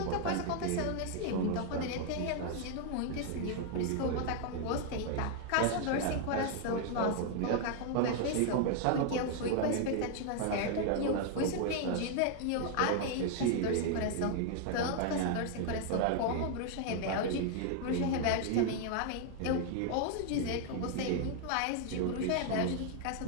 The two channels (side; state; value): both; different; correlation 0.00